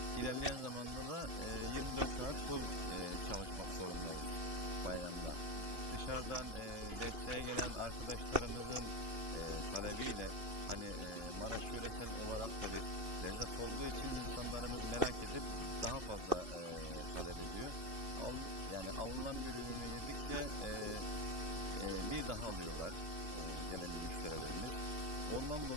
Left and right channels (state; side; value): late; left; 2.7 ms